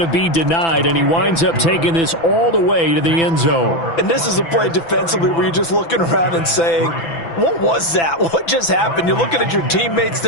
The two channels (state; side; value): late; right; 6.0 ms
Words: be denied, and he winds up taking this all the way to the end zone. And this is a play defensively where you're just looking around and saying, what was that? What just happened? You're looking at your teammates.